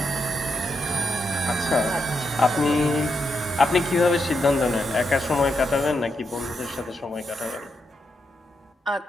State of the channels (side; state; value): both; normal; correlation 0.83